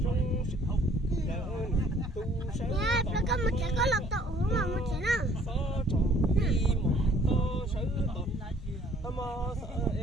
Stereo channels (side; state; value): both; normal; correlation 0.58